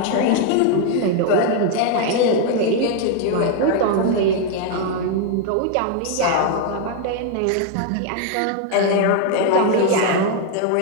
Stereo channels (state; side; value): different; both; correlation 0.00